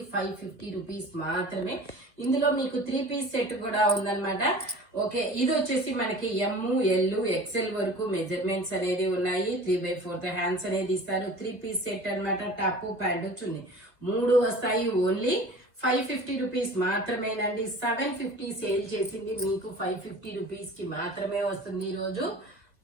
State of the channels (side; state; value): left; late; 2.2 ms